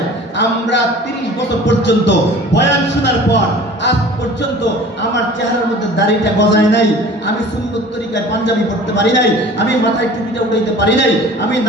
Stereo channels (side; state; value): both; normal; correlation 0.44